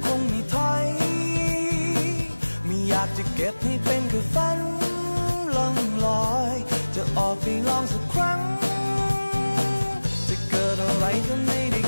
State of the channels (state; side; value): inverted; both; correlation -1.00